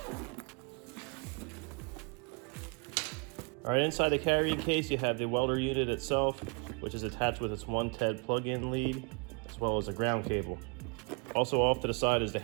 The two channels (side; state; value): left; quieter; 32.6 dB